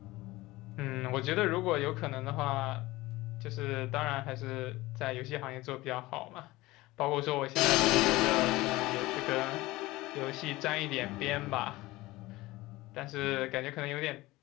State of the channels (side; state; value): right; quieter; 19.4 dB